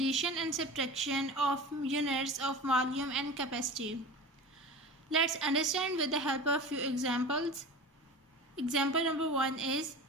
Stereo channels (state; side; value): normal; both; correlation 0.34